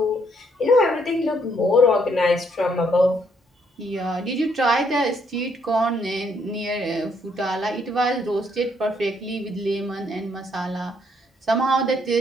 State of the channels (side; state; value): both; normal; correlation 0.70